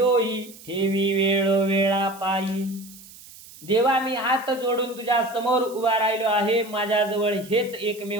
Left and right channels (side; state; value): right; noise; hiss, 20 dB below the sound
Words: ठेवी वेळ वेळा पायी. देवा मी हात जोडून तुझ्या समोर उभा राहिलो आहे, माझ्याजवळ हेच